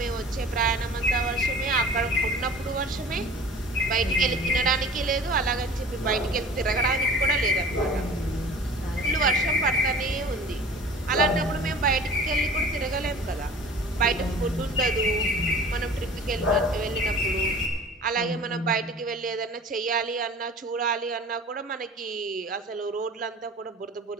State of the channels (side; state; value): both; normal; correlation 0.43